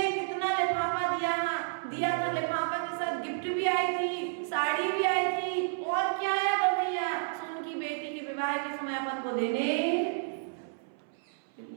कितना लिफाफा दिया था, लिफाफा के साथ गिफ्ट भी आई थी, साड़ी भी आई थी, और क्या आया था भैया, सुन की बेटी के विवाह के समय अपन को देने।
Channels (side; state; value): left; silent; 57 dB below the other